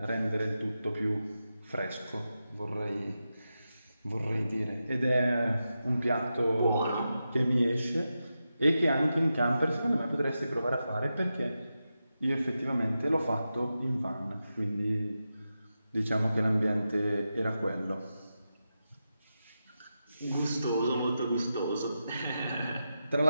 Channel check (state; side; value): inverted; both; correlation -0.89